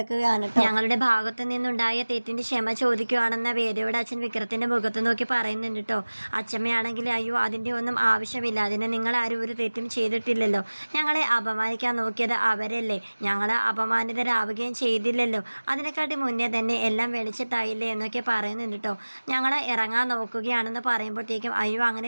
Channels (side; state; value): both; inverted; correlation -1.00